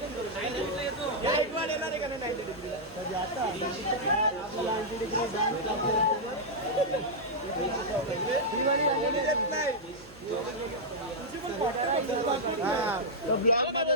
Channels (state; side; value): noise; right; hum, 22 dB below the sound